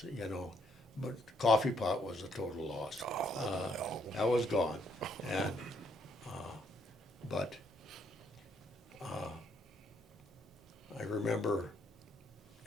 you know, but the coffee pot was a total loss. No. That was gone. And but I remember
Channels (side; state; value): both; normal; correlation 0.71